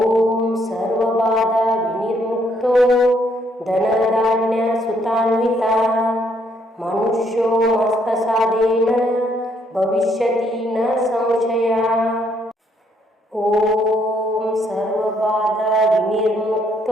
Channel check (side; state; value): both; normal; correlation 0.70